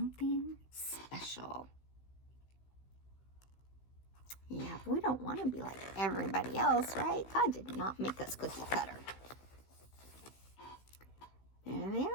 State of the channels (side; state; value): right; late; 16 ms